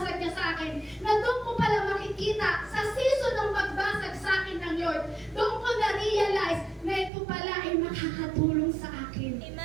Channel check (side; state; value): left; drops out; at 7.1 s